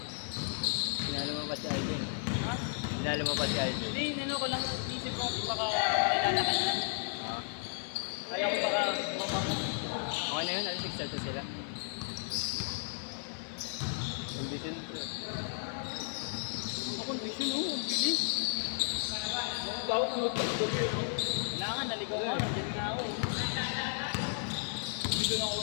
Sinalo mo pa si Alden. Ha? Sinalo mo pa si Alden. Hindi, ano ko lang, isip ko kasi baka makilala ka na. Kaya ko baka Okay na yun, alas 6 na sila. Condition pre. kondisyon oh, ang bilis. Daw ko magpapagabi no. Kailangan naligaw ka, nandiyan nga ako. Hindi ko na ako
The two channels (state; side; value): silent; right; 55 dB below the other